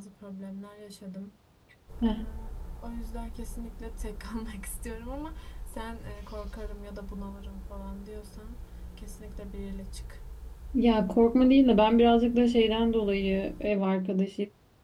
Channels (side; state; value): both; identical; correlation 1.00